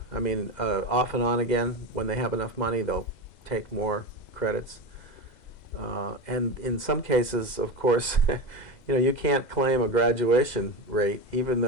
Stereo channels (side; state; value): right; late; 2.0 ms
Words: I mean, off and on again. When they have enough money, they'll take more credits. And in some cases, of course, you can't claim a graduation rate, even